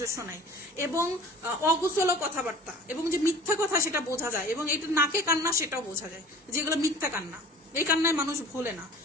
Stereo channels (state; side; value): normal; both; correlation 0.43